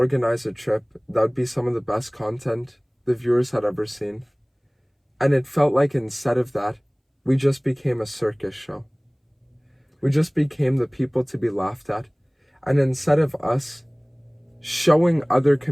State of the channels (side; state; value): both; identical; correlation 1.00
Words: a trip that would be some of the best content the viewers had ever seen. And it felt like instead of that, we just became a circus show. We just became the people to be laughed at. And instead of us showing other